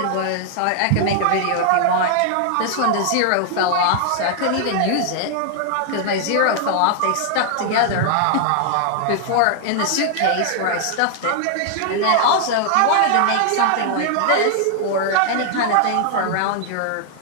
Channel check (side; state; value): both; different; correlation 0.00